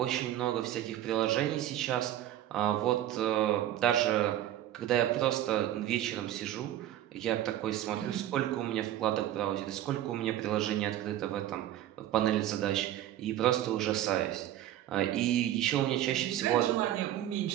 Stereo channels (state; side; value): quieter; left; 12.6 dB